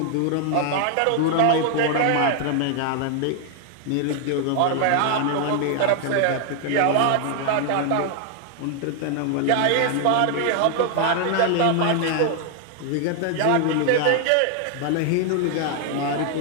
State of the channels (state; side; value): different; both; correlation 0.00